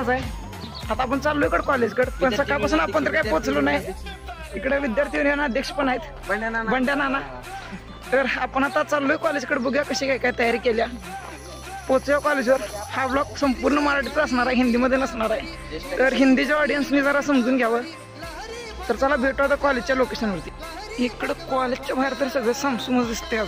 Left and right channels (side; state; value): both; identical; correlation 1.00